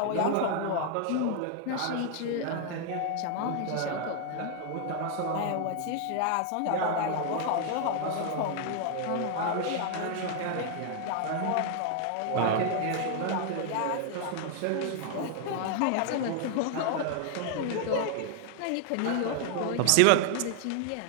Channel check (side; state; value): both; different; correlation 0.00